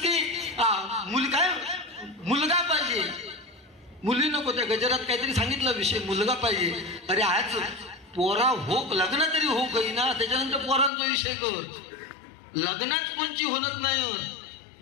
काय मुलगा पाहिजे, मुली नको. त्या गजरात काहीतरी सांगितलं विषय, मुलगा पाहिजे. अरे आज पोरा हो, लग्न तरी हो काही ना, त्याच्यानंतर पोरांचा विषय कर. लग्नात कोणची होत नाही.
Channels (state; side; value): drops out; right; at 10.9 s